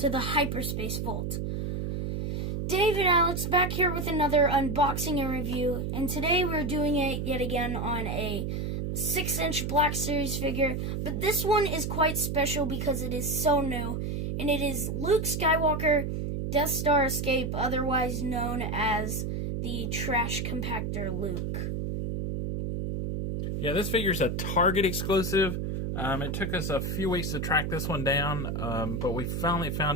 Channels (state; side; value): noise; right; hum, 2 dB below the sound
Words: the Hyperspace Vault. Dave and Alex back here with another unboxing and review, and today we're doing it yet again on a 6-inch Black Series figure, but this one is quite special because it is so new, and it is Luke Skywalker, Death Star Escape, otherwise known as the Trash Compactor Luke. Yeah, this figure's a Target exclusive. It took us a few weeks to track this one down, but we finally